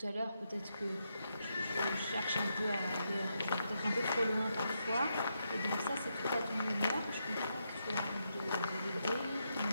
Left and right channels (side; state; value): both; inverted; correlation -0.82